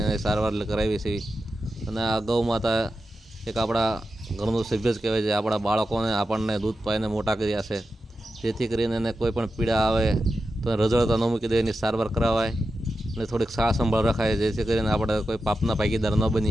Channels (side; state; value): both; normal; correlation 0.90